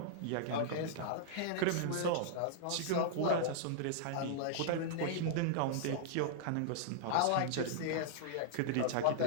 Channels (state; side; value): different; both; correlation -0.01